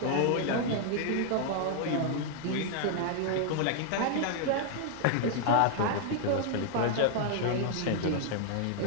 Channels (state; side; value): different; both; correlation 0.00